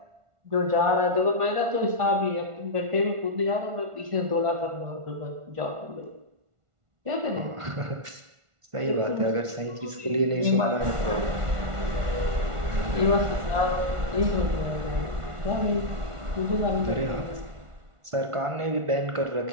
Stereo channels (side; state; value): left; late; 1.5 ms